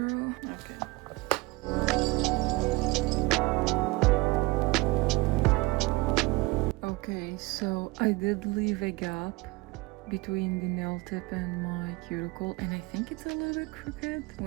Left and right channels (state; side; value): quieter; left; 23.1 dB